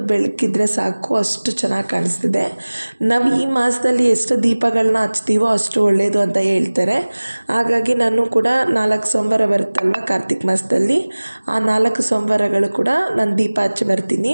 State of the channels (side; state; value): both; inverted; correlation -1.00